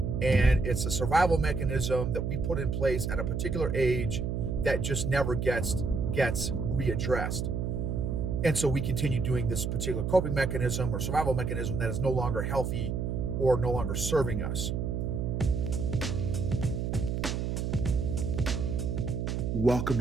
and it's a survival mechanism that we put in place at a particular age that just never gets readdressed. And so we continue doing this particular coping mechanism or survival mechanism that is no longer healthy or no longer serving us. Welcome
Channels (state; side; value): noise; right; hum, 1 dB below the sound